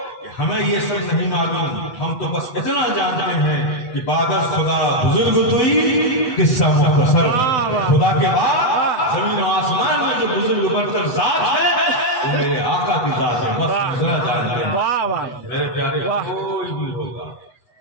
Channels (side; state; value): right; late; 8.2 ms